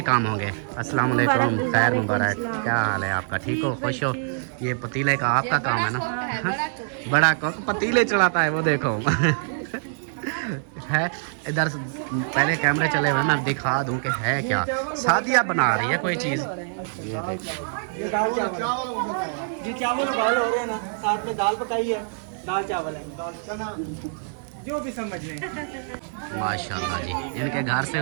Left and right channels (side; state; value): left; silent; digital silence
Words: काम होंगे। अस्सलाम वालेकुम, खैर मुबारक। क्या हाल है आपका? ठीक हो, खुश हो? ये पतीले का आपका काम है ना? बड़ा कोक पतीले चढ़ाता है वो, देखो। है इधर पहले कैमरे चले हुए, मैं दिखा दूं कि है क्या। शादियाँ बना रही है कोई चीज़। ये देखो, ये दाल चावल जी, चावल उबाल हो रहे हैं ना, साथ में दाल पकाई है, दाल चावल है, दाल चना, जो भी समझ लें। माशाल्लाह जी। इनके घर से